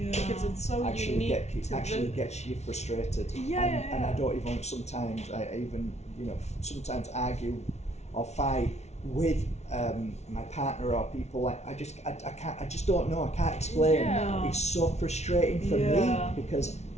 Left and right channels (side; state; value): right; late; 0.32 ms